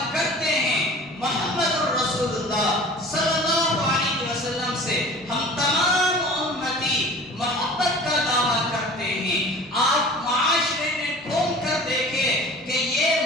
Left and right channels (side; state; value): both; normal; correlation 0.42